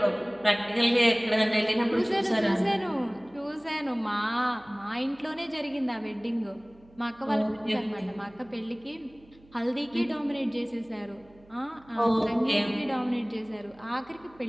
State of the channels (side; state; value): right; noise; hum, 27 dB below the sound